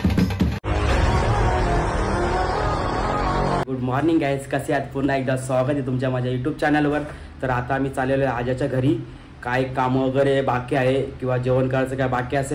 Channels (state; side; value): identical; both; correlation 1.00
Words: गुड मॉर्निंग गाइस, कसे आहात? पुन्हा एकदा स्वागत आहे तुमच्या माझ्या यूट्यूब चॅनलवर। तर आता आम्ही चाललेलो आहे आजाच्या घरी। काय काम वगैरे बाकी आहे किंवा जेवण करायचं काय बाकी